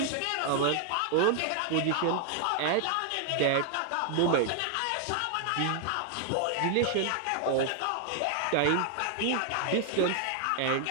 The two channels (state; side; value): different; both; correlation 0.00